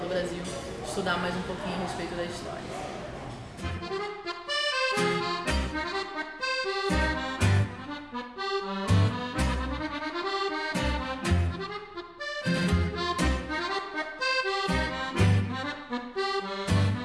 Brasil estudar mais um pouquinho a respeito da história.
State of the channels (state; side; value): identical; both; correlation 1.00